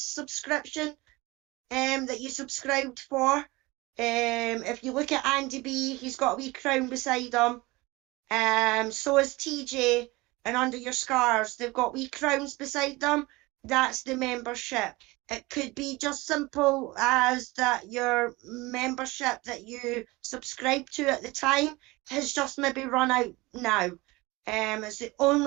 subscription that you subscribed for. If you look at Andy B, he's got a wee crown beside him. So is TJ, and under your scars, they've got wee crowns beside them. That's the membership. It could be just simple as that your membership that you subscribed to at the time has just maybe run out now. It's the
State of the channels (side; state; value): left; quieter; 22.2 dB